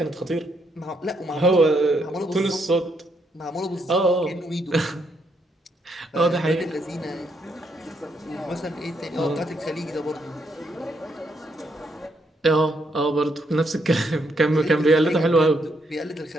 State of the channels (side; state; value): both; normal; correlation 0.76